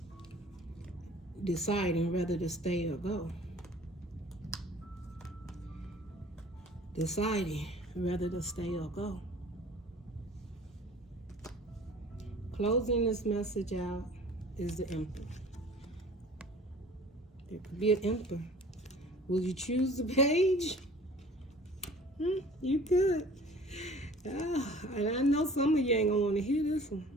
Deciding whether to stay or go. Deciding whether to stay or go. Closing this message out is the Emperor. There could be an Emperor. Will you choose the page? You could. And I know some of you ain't gonna want to hear this one.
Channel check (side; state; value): both; normal; correlation 0.47